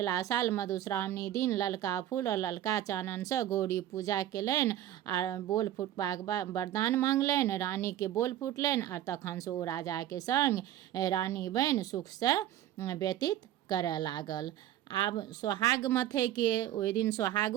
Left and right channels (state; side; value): quieter; left; 12.4 dB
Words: साल मधुश्रावणी दिन ललका फूल और ललका चाननसँ गौरी पूजा केलनि आ बोल फुटबाक वरदान मांगलनि। रानीके बोल फुटलनि आ तखनसँ ओ राजाके संग रानी बनि सुखसँ व्यतीत करय लागल। आब सोहाग मथयके ओहि दिन